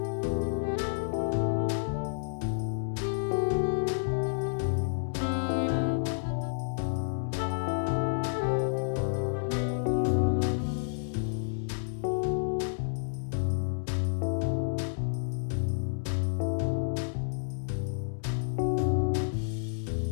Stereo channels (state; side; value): silent; right; digital silence